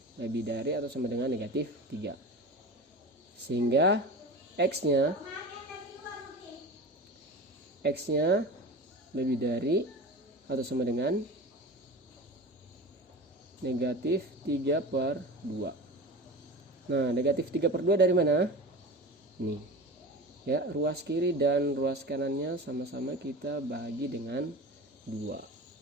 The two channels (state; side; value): normal; both; correlation 0.32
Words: lebih dari atau sama dengan negatif 3. Sehingga X-nya lebih dari atau sama dengan negatif 3/2. Nah, negatif 3/2 dari mana? Nih ya, ruas kiri dan ruas kanannya sama-sama kita bagi dengan 2.